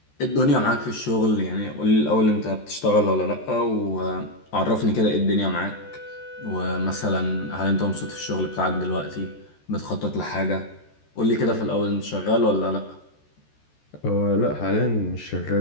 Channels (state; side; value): late; right; 14 ms